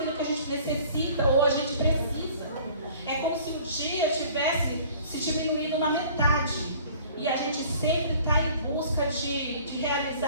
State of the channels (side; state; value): both; inverted; correlation -0.50